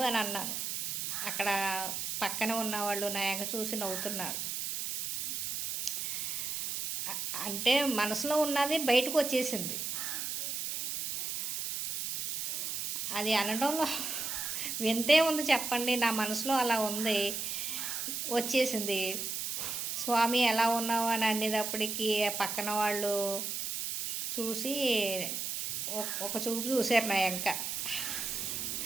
అన్నాను. అక్కడ పక్కన ఉన్నవాళ్ళు నా ఎంక చూసి నవ్వుతున్నారు. అంటే మనసులో ఉన్నది బయటకు వచ్చేసింది. అది అనడంలో వింతే ఉంది చెప్పండి. నా మనసులో అలా ఉంది, వచ్చేసింది. స్వామి ఎలా ఉన్నావు అని అనేటప్పటికీ పక్కన వాళ్ళు చూసి ఒక చూపు చూశారు నా ఎంక.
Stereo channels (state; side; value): noise; right; hiss, 3 dB below the sound